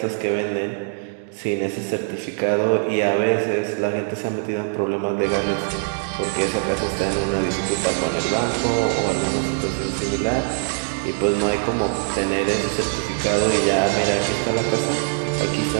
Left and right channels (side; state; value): left; silent; digital silence